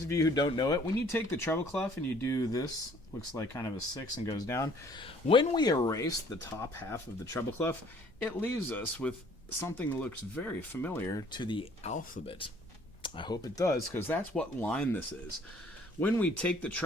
of you who don't know it, when you take the treble clef and you do this looks like kind of a 6 and goes down. When we erase the top half of the treble clef, it leaves us with something that looks very familiar to the alphabet. I hope it does, because that's what line this is. When we take the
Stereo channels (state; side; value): normal; both; correlation 0.58